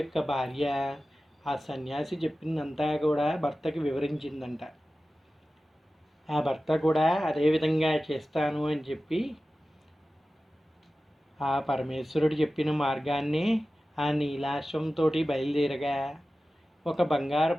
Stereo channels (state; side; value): normal; both; correlation 0.95